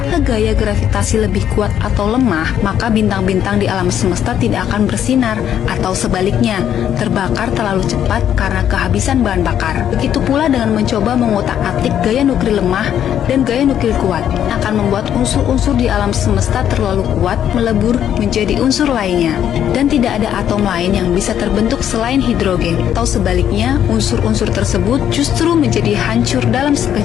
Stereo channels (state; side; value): quieter; right; 9.9 dB